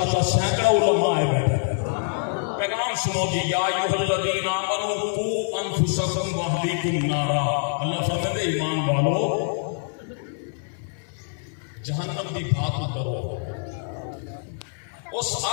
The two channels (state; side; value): silent; right; digital silence